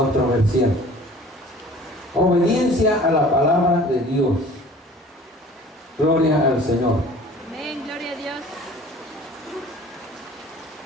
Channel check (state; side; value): normal; both; correlation 0.47